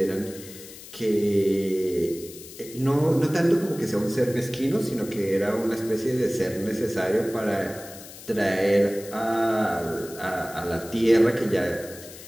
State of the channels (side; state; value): left; noise; hiss, 16 dB below the sound